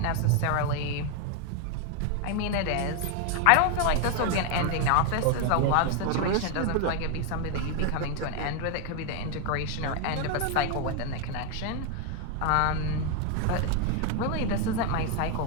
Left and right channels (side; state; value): both; different; correlation 0.01